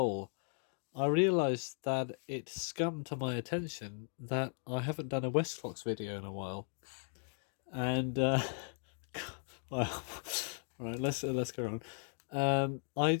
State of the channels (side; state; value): right; silent; 53 dB below the other